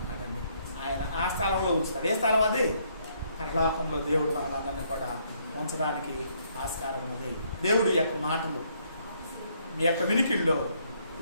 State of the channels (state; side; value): inverted; both; correlation -0.70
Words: ఆయన ఆ స్థలంలో ఉంచుతాడు. ఏ స్థలం అది? పరలోకంలో దేవుడు మనలందరినీ కూడా ఉంచడానికి ఆస్కారం ఉంది. దేవుడి యొక్క మాటలు మీ యొక్క వినికిల్లో